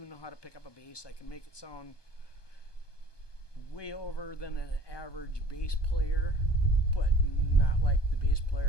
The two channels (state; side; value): late; right; 1.2 ms